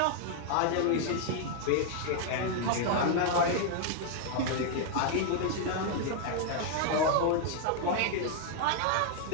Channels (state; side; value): different; both; correlation 0.00